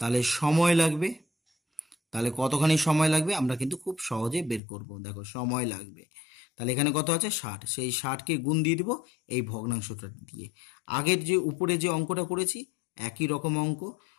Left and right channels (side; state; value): right; drops out; at 4.6 s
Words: সময় লাগবে, তাহলে কতখানি সময় লাগবে আমরা কিন্তু খুব সহজে বের করব। দেখো সময় লাগবে, তাহলে এখানে কত আছে 60, সেই 60কে গুণ দিয়ে দিব এই ভগ্নাংশটা দিয়ে। আগের যে উপরে যে অঙ্কটা করেছি একই রকম অঙ্ক,